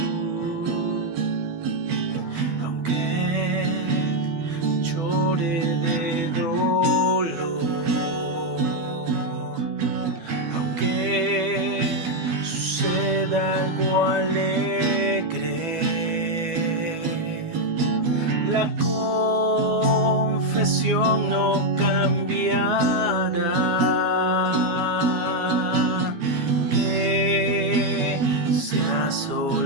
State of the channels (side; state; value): left; late; 12 ms